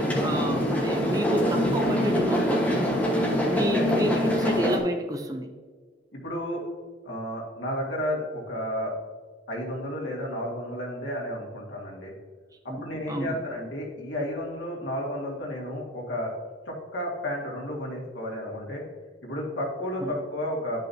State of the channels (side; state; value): both; normal; correlation 0.53